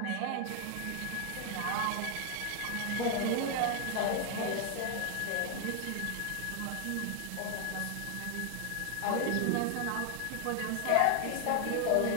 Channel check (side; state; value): both; different; correlation 0.00